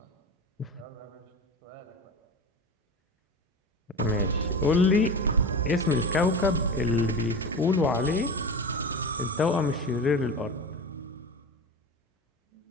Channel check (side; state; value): both; normal; correlation 0.28